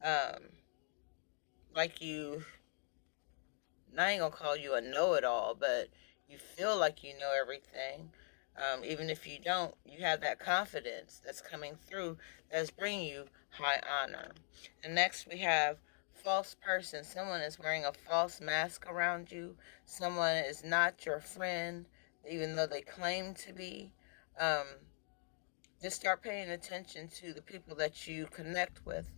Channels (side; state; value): right; silent; 50 dB below the other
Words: Like you, I ain't gonna call you a know-it-all, but you feel like you know everything. Even if you don't, you have that confidence that's coming through that's bringing you high honor. And next we have false person. Someone is wearing a false mask around you. Someone is not your friend, even though they claim to be. Just start paying attention to the people that you connect with,